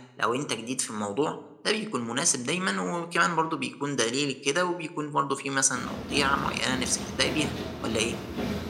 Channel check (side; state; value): both; identical; correlation 1.00